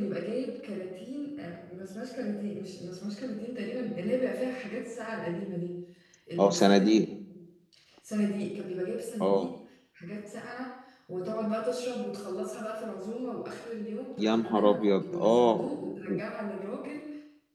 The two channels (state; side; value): identical; both; correlation 1.00